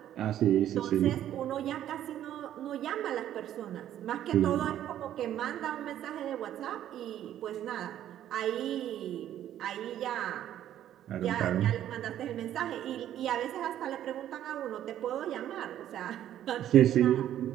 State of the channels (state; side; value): quieter; left; 11.5 dB